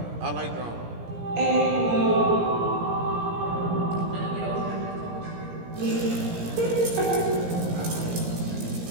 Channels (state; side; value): late; left; 17 ms